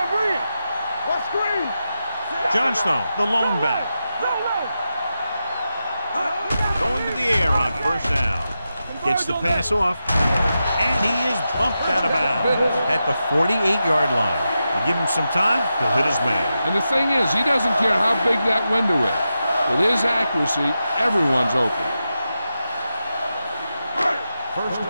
read. What screen? Johnstone, the lone back. Going to the air on first down. Gets the pass off. And he is bumped out of bounds at the 48-yard line. You give him some time, he'll hit his man. And the thing is, he doesn't care how big that window is. With his accuracy, everyone's open. First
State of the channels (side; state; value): both; inverted; correlation -0.89